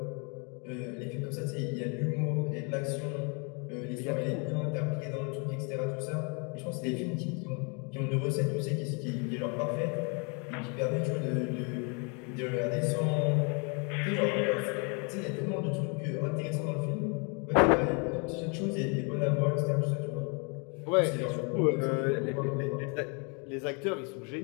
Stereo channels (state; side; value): quieter; right; 34.8 dB